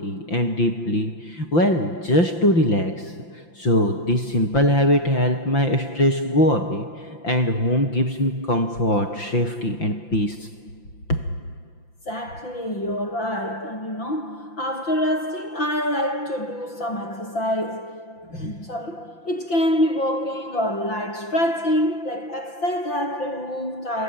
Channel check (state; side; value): late; right; 5.9 ms